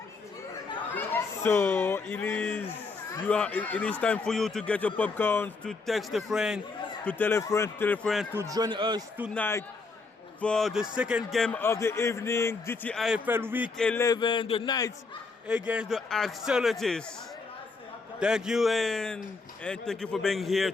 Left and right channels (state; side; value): quieter; right; 4.1 dB